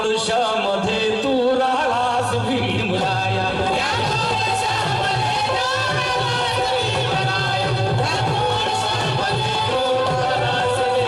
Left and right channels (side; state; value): both; identical; correlation 1.00